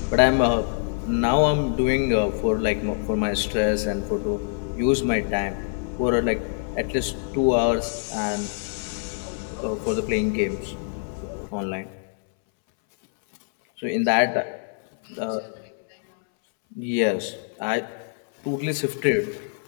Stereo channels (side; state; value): right; silent; 62 dB below the other